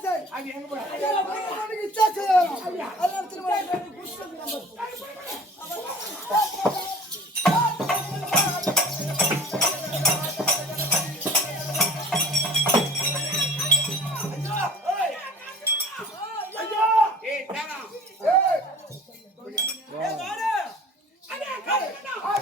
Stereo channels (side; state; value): both; normal; correlation 0.44